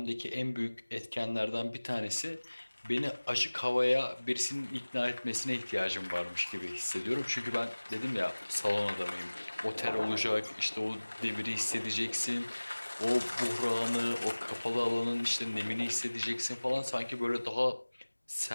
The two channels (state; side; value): inverted; both; correlation -1.00